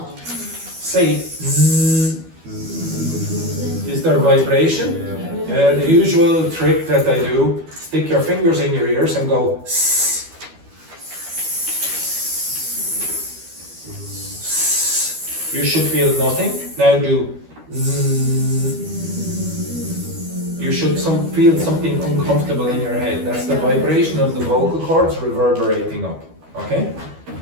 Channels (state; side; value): late; left; 12 ms